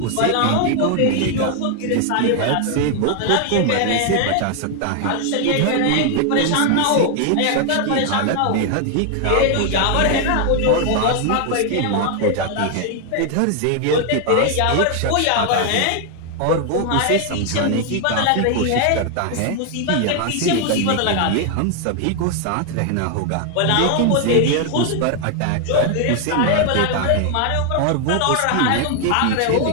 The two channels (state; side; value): different; both; correlation 0.00